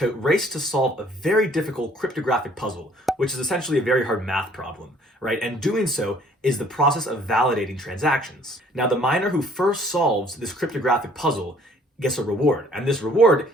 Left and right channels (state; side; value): normal; both; correlation 0.58